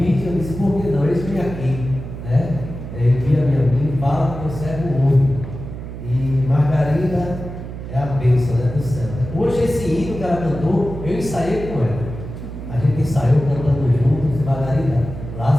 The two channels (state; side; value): noise; right; hum, 9 dB below the sound